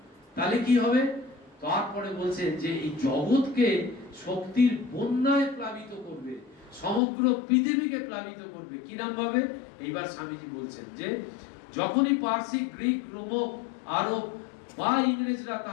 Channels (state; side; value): drops out; right; at 7.0 s